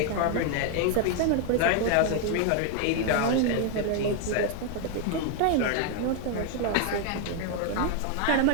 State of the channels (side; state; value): both; different; correlation 0.00